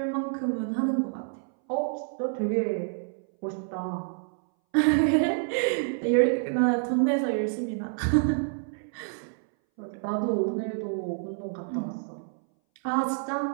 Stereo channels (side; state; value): left; silent; 59 dB below the other